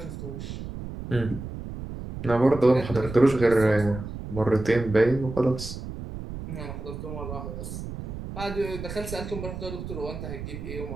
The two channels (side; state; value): right; noise; rumble, 9 dB below the sound